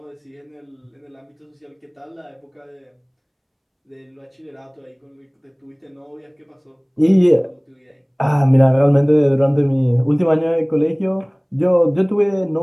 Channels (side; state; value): both; identical; correlation 1.00